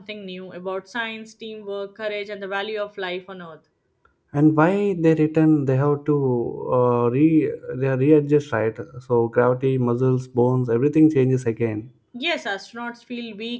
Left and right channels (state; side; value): identical; both; correlation 1.00